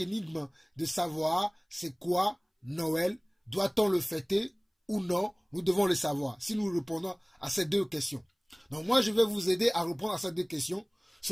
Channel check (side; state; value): both; identical; correlation 1.00